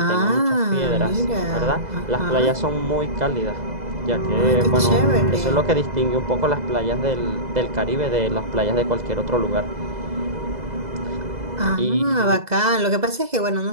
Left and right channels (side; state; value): left; late; 2.0 ms